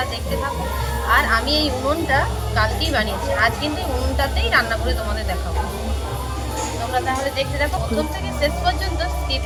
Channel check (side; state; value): both; identical; correlation 1.00